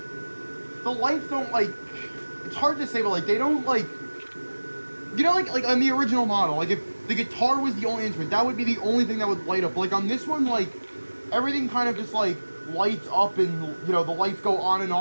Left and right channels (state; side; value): inverted; both; correlation -1.00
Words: like, it's hard to say, but like, they don't, like, you know, like on the original model, like if the guitar was the only instrument, that would be the only thing that would light up. Like on this one, like, everything kind of just like lights up, and you know, the lights go on and